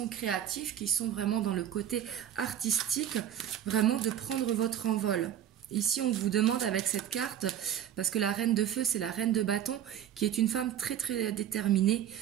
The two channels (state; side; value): quieter; left; 10.3 dB